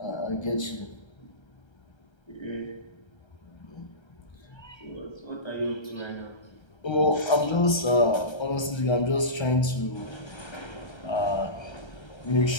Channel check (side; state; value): right; late; 1.3 ms